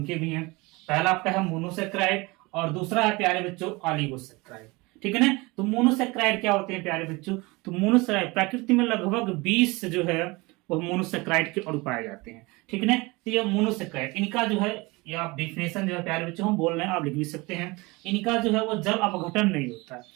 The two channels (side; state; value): left; quieter; 24.2 dB